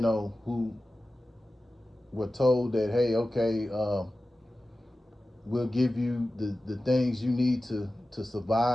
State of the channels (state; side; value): normal; both; correlation 0.95